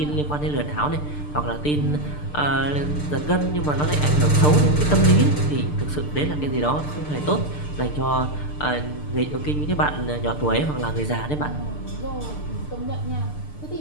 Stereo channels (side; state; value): right; late; 6.7 ms